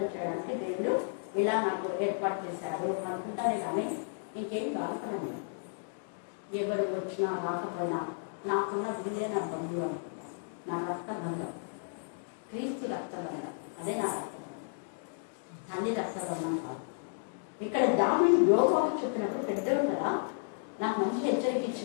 చేయడానికి దేవుడు ఇలా నాకు ఏర్పాటు చేశారు అనుకుంటానే కానీ ఇంకేం బాధపడను. ఎవరు వచ్చినా రాకపోయినా నాకున్న వీళ్ళే నా బంధువు అనుకున్నాను. నా రక్త బంధం, క్రీస్తు రక్త బంధం, అదే నా రక్త బంధం, తల్లి రక్త బంధం కాదు. ఇక్కడ దావీదు యోగాబు చెప్పినప్పుడు పెద్దలు కదా నాకు మంచి హెచ్చరిక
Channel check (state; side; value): silent; right; digital silence